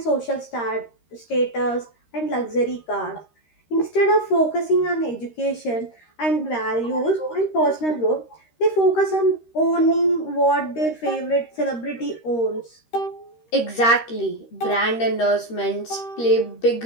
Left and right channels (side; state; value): right; late; 13 ms